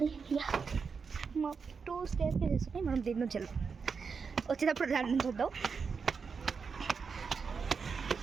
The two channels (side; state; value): left; quieter; 5.5 dB